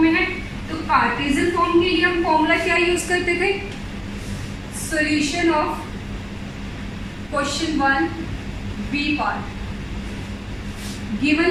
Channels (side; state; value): both; identical; correlation 1.00